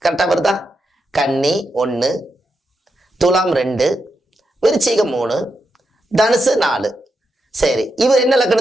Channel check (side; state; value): both; normal; correlation 0.85